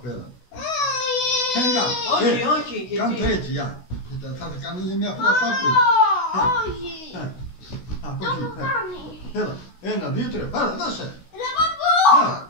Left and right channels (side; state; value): right; late; 16 ms